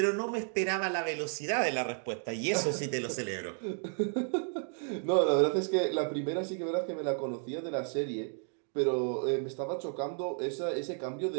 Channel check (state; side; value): silent; left; 56 dB below the other